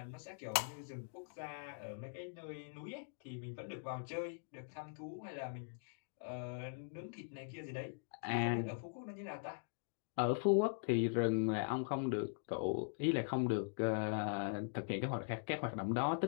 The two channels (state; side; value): silent; right; digital silence